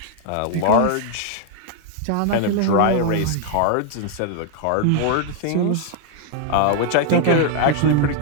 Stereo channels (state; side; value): different; both; correlation 0.00